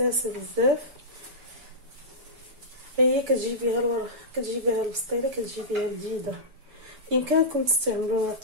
بزاف. هي كتجيبيها البسطيله، كتجيبيها جديده. بامكانكم تستعملوا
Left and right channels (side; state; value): left; late; 6.9 ms